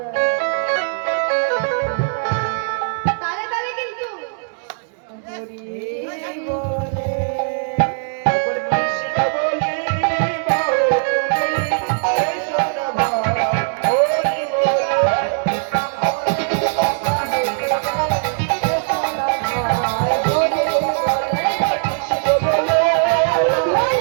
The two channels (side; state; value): left; silent; 66 dB below the other